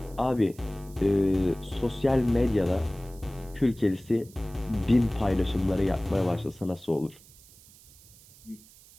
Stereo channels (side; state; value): right; noise; hiss, 24 dB below the sound